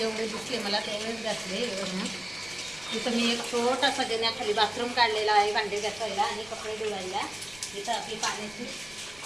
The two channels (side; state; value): left; noise; rumble, 22 dB below the sound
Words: दिसले मला तेवढेच घासले. इथं मी एक छोटासा देण्याखाली बाथरूम काढलेला आहे भांडे घासायला आणि कपडे धुवायला. इथं आपली पाण्याची